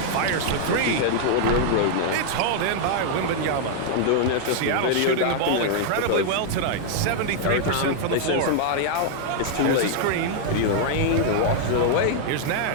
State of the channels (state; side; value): different; both; correlation 0.00